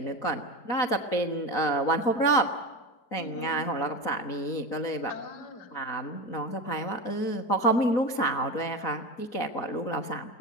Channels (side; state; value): right; late; 4.1 ms